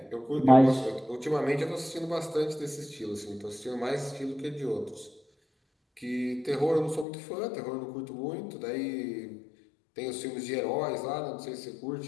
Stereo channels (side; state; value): right; drops out; at 7.1 s